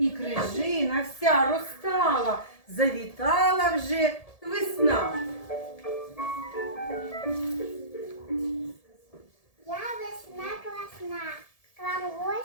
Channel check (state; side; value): late; right; 1.7 ms